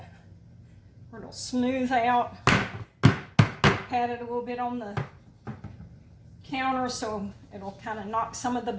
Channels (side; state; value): both; identical; correlation 1.00